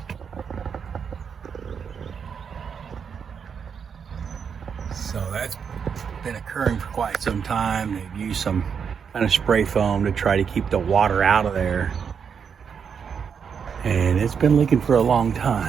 So that's been occurring for quite some time. They've used some kind of spray foam to try to keep the water out of there. And it's been leaking for a long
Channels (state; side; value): quieter; left; 6.8 dB